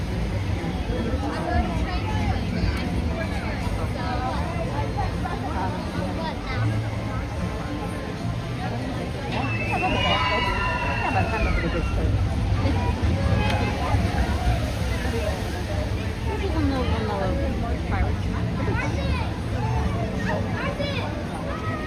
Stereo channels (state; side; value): identical; both; correlation 1.00